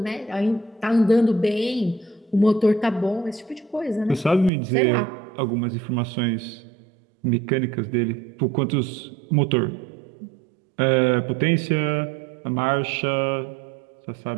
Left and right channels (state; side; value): drops out; left; at 4.5 s